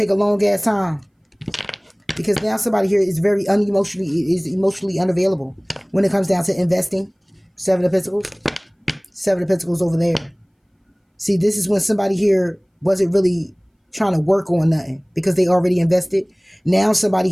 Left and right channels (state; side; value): identical; both; correlation 1.00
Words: take a long ass time. Because now somebody here is very emotionally unavailable. When it comes down to investing. Seven of Pentacles. Seven of Pentacles over there. See, this is when somebody here wasn't really trying to work on nothing. Because they already invested. Now somebody